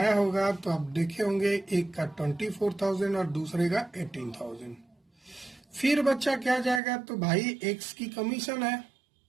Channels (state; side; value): drops out; left; at 6.8 s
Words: होगा तो आप देखे होंगे, एक का 24,000 और दूसरे का 18,000। फिर बच्चा क्या जाएगा, तो भाई एक्स की कमीशन है